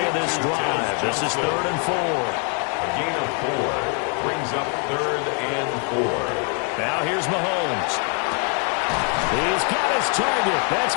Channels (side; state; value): right; quieter; 39.9 dB